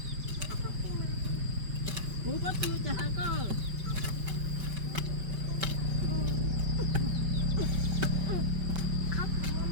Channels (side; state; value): left; late; 5.3 ms